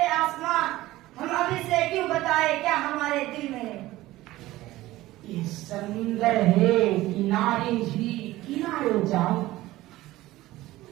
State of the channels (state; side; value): quieter; left; 17.0 dB